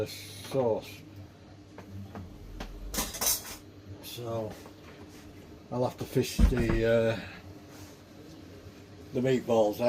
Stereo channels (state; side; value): identical; both; correlation 1.00